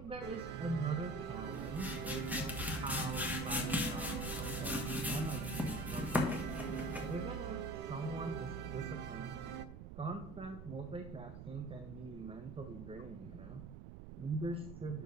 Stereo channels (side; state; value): right; noise; rumble, 11 dB below the sound